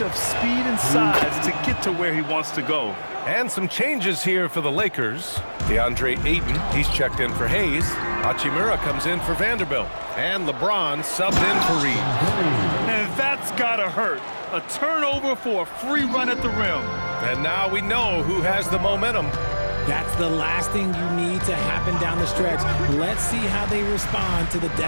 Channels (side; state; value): both; inverted; correlation -1.00